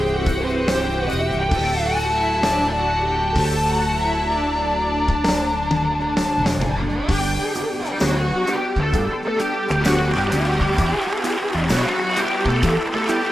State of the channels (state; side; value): normal; both; correlation 0.92